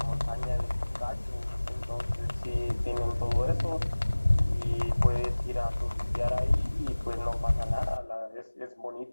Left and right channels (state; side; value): inverted; both; correlation -1.00